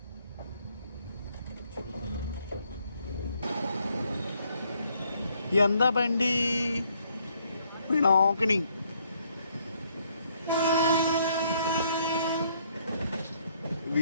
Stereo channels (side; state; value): both; inverted; correlation -0.69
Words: ఎంత బండి Pinakini.